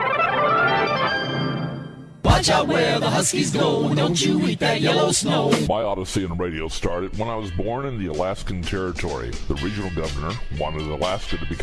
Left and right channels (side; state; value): both; identical; correlation 1.00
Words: Watch out where the Huskies go, don't you eat that yellow snow. My odyssey in radio started when I was born in the Alaskan Territory. The regional governor wanted Alaska to